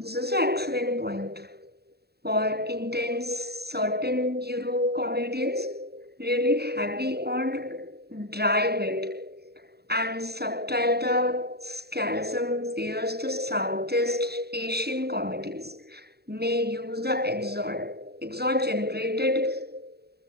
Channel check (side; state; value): left; late; 0.47 ms